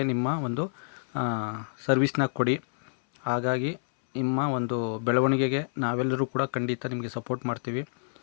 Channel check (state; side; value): silent; right; 59 dB below the other